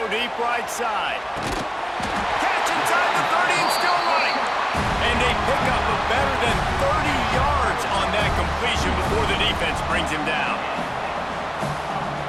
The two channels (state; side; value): identical; both; correlation 1.00